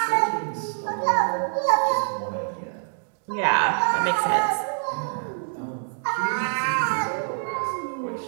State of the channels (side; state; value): left; silent; digital silence